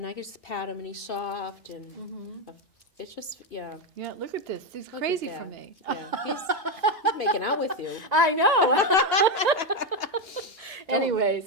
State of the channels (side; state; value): both; normal; correlation 0.08